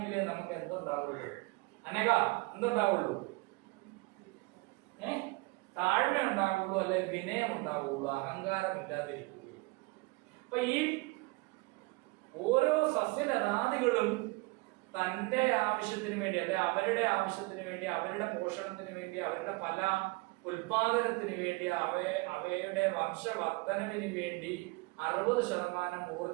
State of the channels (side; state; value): left; quieter; 25.6 dB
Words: നമുക്ക് എന്തുണ്ടാവുള്ളൂ? എന്തുണ്ടാവുള്ളൂ? താഴ്മ ഉണ്ടാവുള്ളൂ, അല്ലെ വിനയം ഉണ്ടാവുള്ളൂ, അഹങ്കാരം ഇല്ലാതിരിക്കുകയുള്ളൂ. അപ്പൊ ഈ ഓരോ സസ്യലതാദികളും തന്റെ ആവശ്യത്തിന് വേണ്ടി, അല്ലെ അവരുടെ ആവശ്യത്തിന് വേണ്ടി, അവരുടെ പോഷണത്തിന് വേണ്ടി, അവരുടെ ഫല ഉൽപാദനത്തിന് വേണ്ടി, അവയുടെ വംശവർദ്ധനവിന് വേണ്ടി 60%